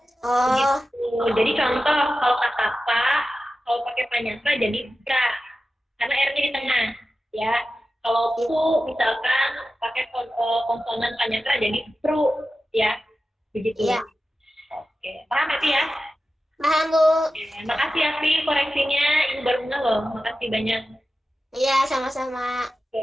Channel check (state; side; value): normal; both; correlation 0.93